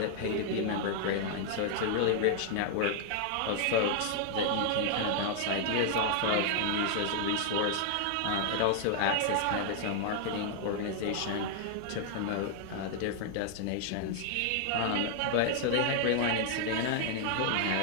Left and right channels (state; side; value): different; both; correlation 0.00